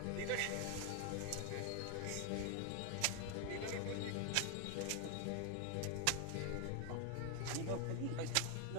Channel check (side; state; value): both; different; correlation 0.01